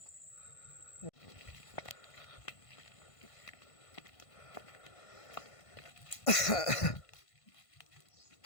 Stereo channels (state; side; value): late; right; 1.5 ms